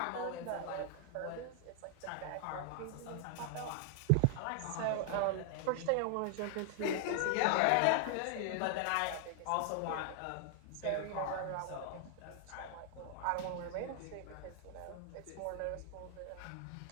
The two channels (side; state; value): both; different; correlation 0.00